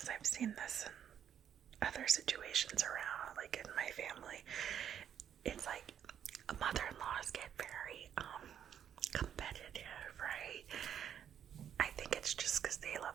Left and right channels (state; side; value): quieter; left; 9.1 dB